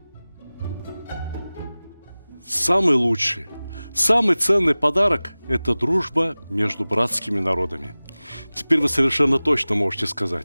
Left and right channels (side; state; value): both; inverted; correlation -0.98